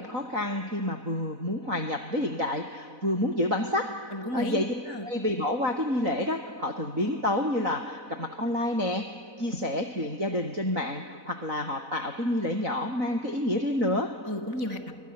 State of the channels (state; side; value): late; left; 4.0 ms